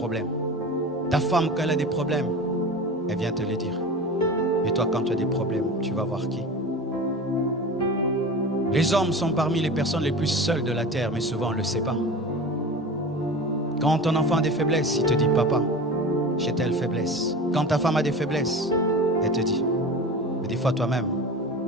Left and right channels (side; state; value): both; normal; correlation 0.33